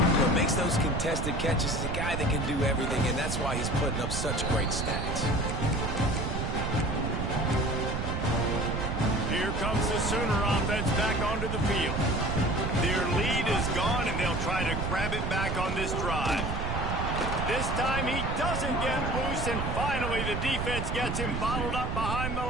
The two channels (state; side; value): noise; right; rumble, 2 dB below the sound